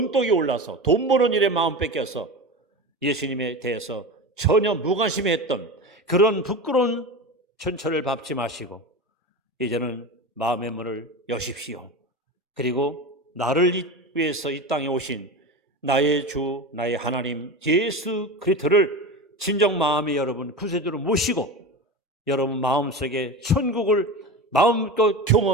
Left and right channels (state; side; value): normal; both; correlation 0.26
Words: 올라서 돈 버는 일에 마음 뺏겨서 예수님에 대해서 전혀 무관심했던 그런 부끄러운 천철을 밟지 마시고 이제는 마음의 문을 여십시오. 그리고 나를 위해서 이 땅에 오신 나의 주 나의 하나님 예수 그리스도를 진정 마음에 여러분 구세주로 모시고 여러분 마음속에 천국을 마음껏